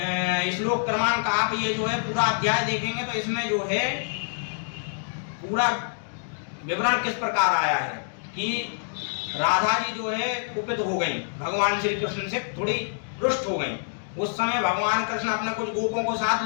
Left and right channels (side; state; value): right; silent; digital silence